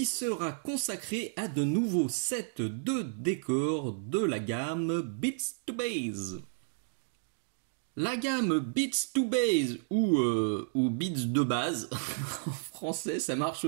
sera consacrée à de nouveaux sets de décors de la gamme Beats to Base. La gamme Beats to Base ou Beats de base, en français ça marche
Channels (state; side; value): silent; left; digital silence